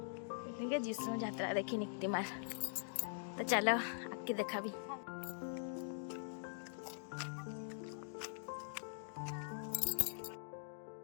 जीशु यात्रा देखी निक्तिमाल। तो चलो आके देखा भी।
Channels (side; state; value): right; silent; digital silence